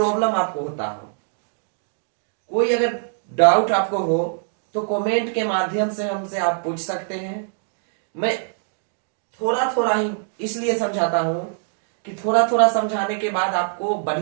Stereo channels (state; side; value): silent; left; digital silence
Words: आपको होता हो, कोई अगर डाउट आपको हो, तो कमेंट के माध्यम से हमसे आप पूछ सकते हैं। मैं थोड़ा थोड़ा ही इसलिए समझाता हूं कि थोड़ा थोड़ा समझाने के बाद आपको